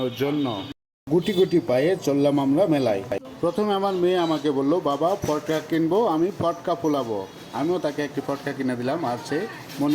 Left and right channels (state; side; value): identical; both; correlation 1.00